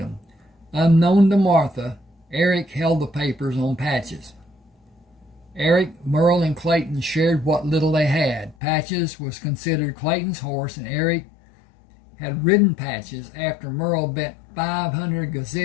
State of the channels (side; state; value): right; drops out; at 8.6 s